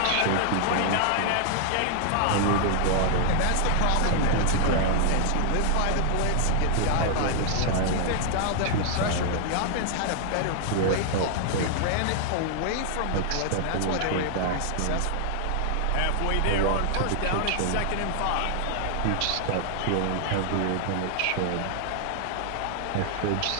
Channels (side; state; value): both; different; correlation 0.00